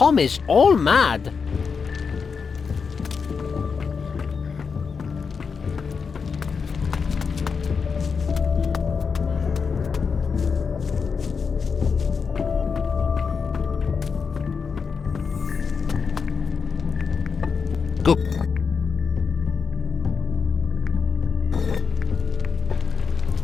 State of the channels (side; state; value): right; quieter; 5.6 dB